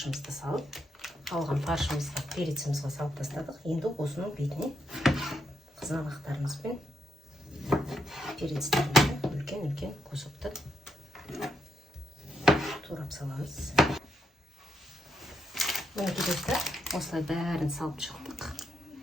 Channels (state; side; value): normal; both; correlation 0.80